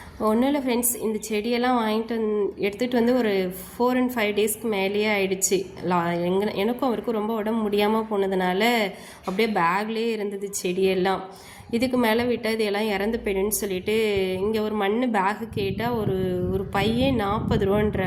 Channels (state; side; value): identical; both; correlation 1.00